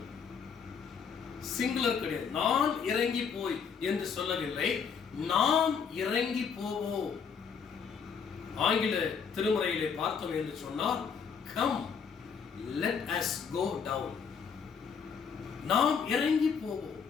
சிங்குலர் கிடையாது. நான் இறங்கி போய் என்று சொல்லவில்லை, நாம் இறங்கி போவோம். ஆங்கில திருமுறையிலே பார்த்தோம் என்று சொன்னால், come let us go down. நாம் இறங்கி போவோம்.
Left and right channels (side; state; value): right; quieter; 6.5 dB